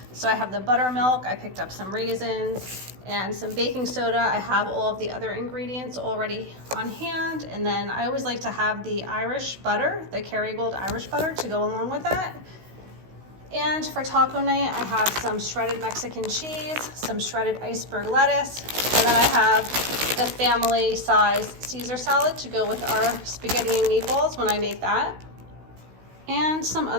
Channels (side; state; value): left; late; 16 ms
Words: So I have the buttermilk, I picked up some raisins and some baking soda. I have all of the other ingredients already on hand. And then I always like to have the Irish butter, the Kerrygold Irish butter, to go along with that. And for taco night, I have some shredded Mexican cheese, some shredded iceberg lettuce, and then I have the family size Caesar salad to go with our spaghetti and meatballs when I make that. And some